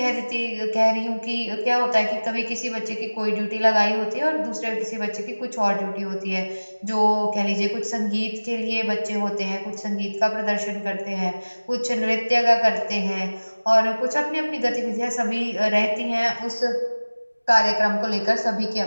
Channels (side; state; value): both; inverted; correlation -1.00